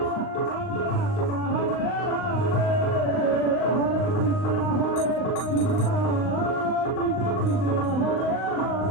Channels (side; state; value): right; late; 39 ms